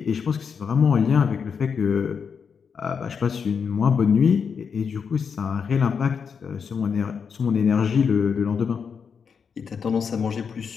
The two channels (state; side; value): quieter; right; 6.3 dB